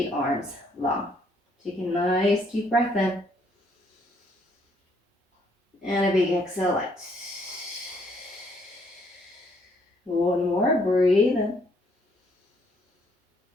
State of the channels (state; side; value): normal; both; correlation 0.67